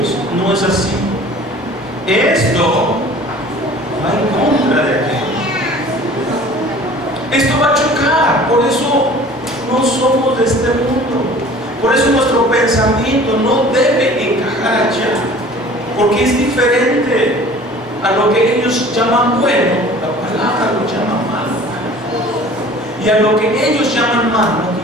No es así. Esto va en contra de aquello. Esto va a chocar. Por eso no somos de este mundo. Por eso nuestro pensamiento no debe encajar allá. Porque es diferente a lo que ellos llaman bueno. La palabra lo llama malo. Y a lo que ellos llaman malo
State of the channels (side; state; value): both; normal; correlation 0.46